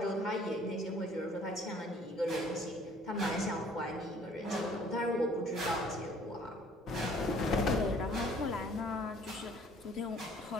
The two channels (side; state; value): both; normal; correlation 0.57